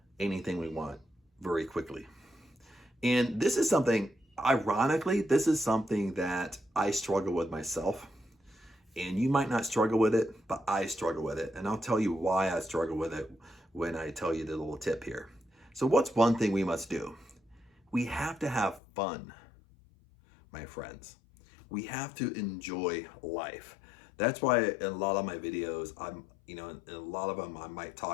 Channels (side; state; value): right; drops out; at 18.8 s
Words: anything we want very quickly? And this is something, ironically, this is something that I struggle with myself. And you might not struggle with it, but I struggle with it. And I'll tell you why I struggle with it when I tell you the little tip here. So what's one thing we must do? We have to have fun, my friends. We have to enjoy life. That's why in a lot of my videos, in a lot of them, I might